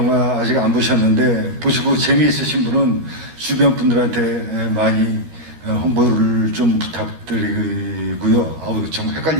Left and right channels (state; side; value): late; left; 13 ms